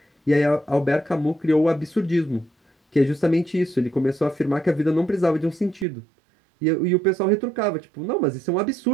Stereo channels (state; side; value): drops out; left; at 5.9 s